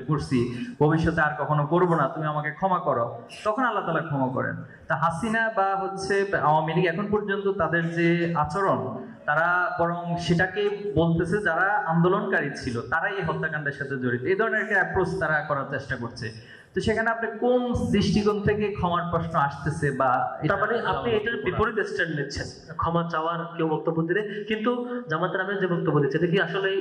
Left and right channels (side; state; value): both; identical; correlation 1.00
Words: করছি, ভবিষ্যতে আর কখনো করবো না, তুমি আমাকে ক্ষমা করো, তখন আল্লাহ তাআলা ক্ষমা করেন। তা হাসিনা বা হচ্ছে আওয়ামী লীগ এখন পর্যন্ত তাদের যে আচরণ, তারা বরং সেটাকে বলতেছে যারা আন্দোলনকারী ছিল তারাই এই হত্যাকাণ্ডের সাথে জড়িত, এই ধরনের একটা অ্যাপ্রোচ তারা করার চেষ্টা করছে। তো সেখানে আপনি কোন দৃষ্টিকোণ থেকে ক্ষমার প্রশ্ন আসতেছে, বা তার মানে আপনি এটার বিপরীত স্ট্যান্ড নিচ্ছেন, ক্ষমা চাওয়ার কেউ বক্তব্য দিলে, কিন্তু জামাতের আমির যে বক্তব্য দিচ্ছে এটা কি আসলে